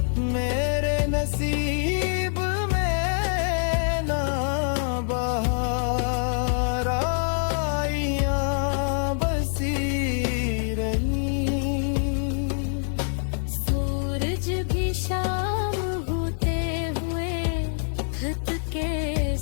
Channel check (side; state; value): right; silent; digital silence